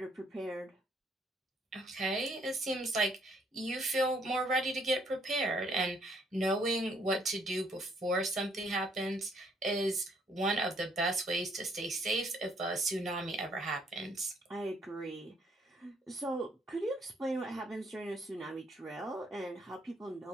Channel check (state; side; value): normal; both; correlation 0.67